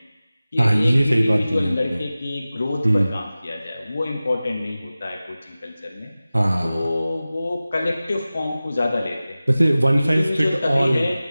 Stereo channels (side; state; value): both; inverted; correlation -0.96